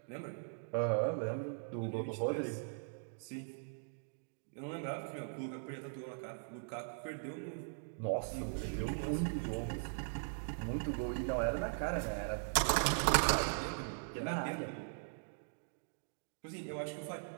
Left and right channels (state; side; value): silent; left; digital silence